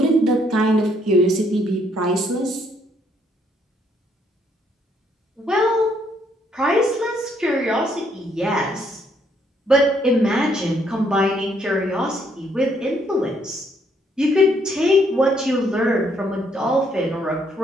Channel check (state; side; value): normal; both; correlation 0.70